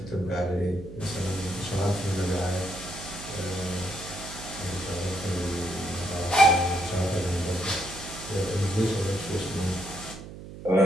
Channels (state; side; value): noise; right; hum, 13 dB below the sound